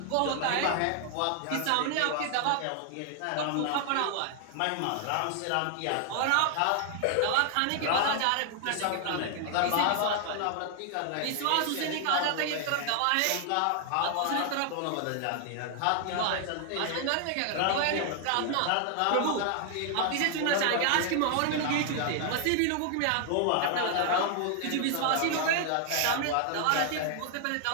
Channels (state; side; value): different; both; correlation 0.00